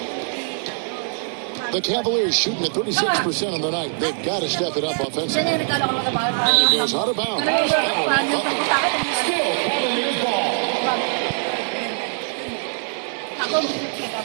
The Cavaliers shooting at 36% on the night. They've got to step it up offensively. And it goes out of bounds. That one off Butler. Still Cavaliers ball.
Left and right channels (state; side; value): silent; left; 60 dB below the other